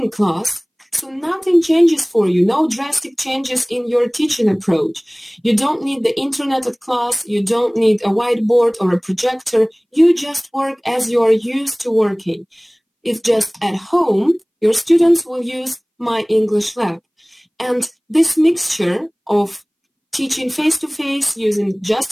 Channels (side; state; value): both; identical; correlation 1.00